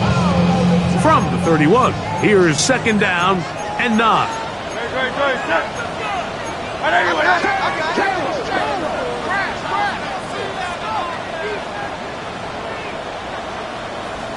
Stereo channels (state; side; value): identical; both; correlation 1.00